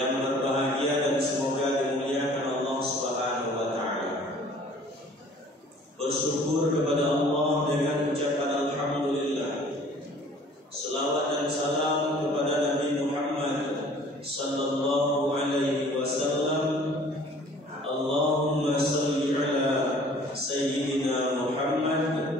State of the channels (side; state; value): both; normal; correlation 0.52